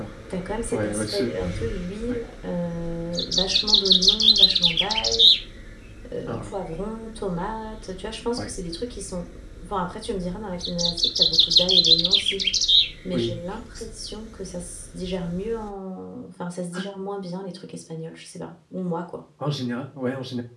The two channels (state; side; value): identical; both; correlation 1.00